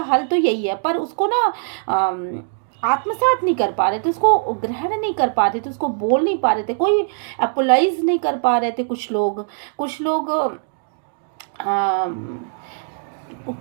हल तो यही है, पर उसको ना आत्मसात नहीं कर पा रहे थे, उसको ग्रहण नहीं कर पा रहे थे, उसको बोल नहीं पा रहे थे, कोई अपोलाइज नहीं कर पा रहे थे। कुछ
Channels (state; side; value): silent; left; digital silence